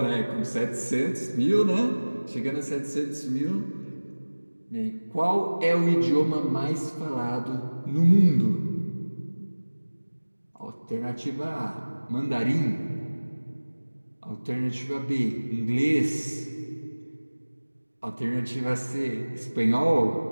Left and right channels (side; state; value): both; inverted; correlation -1.00